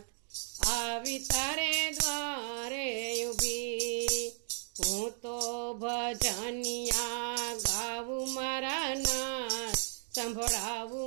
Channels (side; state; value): left; silent; 55 dB below the other